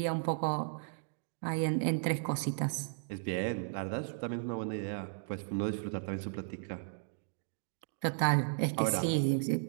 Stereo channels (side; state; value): left; silent; digital silence